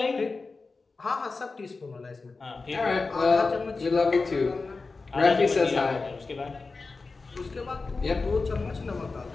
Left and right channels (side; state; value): right; quieter; 4.0 dB